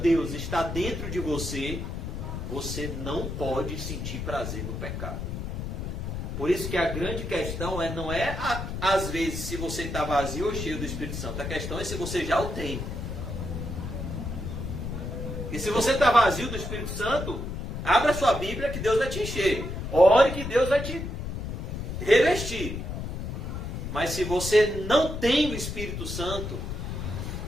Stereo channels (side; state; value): left; noise; rumble, 5 dB below the sound